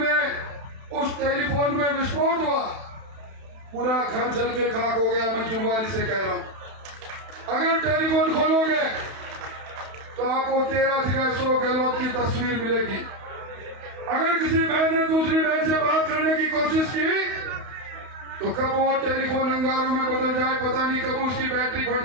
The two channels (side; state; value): left; late; 31 ms